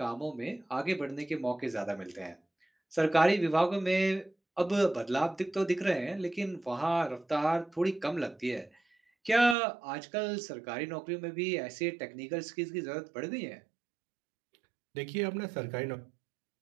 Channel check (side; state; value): left; drops out; at 9.6 s